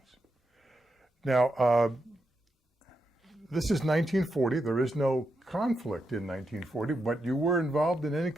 Now, this is 1940. There is no conflict in 1940, but you were involved in any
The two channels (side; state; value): both; normal; correlation 0.85